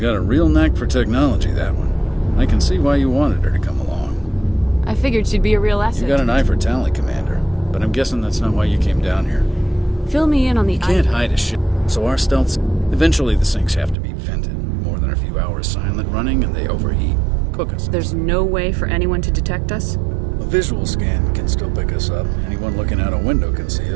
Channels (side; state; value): left; drops out; at 14.0 s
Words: a real knack for technology, that one. I can see why you wanted her to come along. I figured she'd be a real asset. You got an eye for Tally, Commander. But I'm guessing that's not why you came down here. Fill me in on the... You can't hide a ship, so our stealth... Eventually the sinks have to be vented. More than a few hours silent running and they overheat. Cook us. There's no way for anyone to detect us? A visual scan can still pick us up. Anyone looking out a window can see